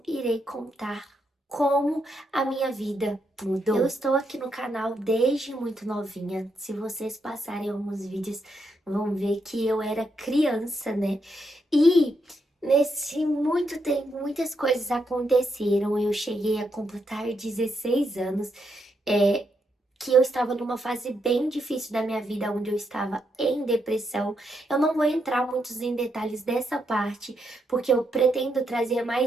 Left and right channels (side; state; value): both; normal; correlation 0.80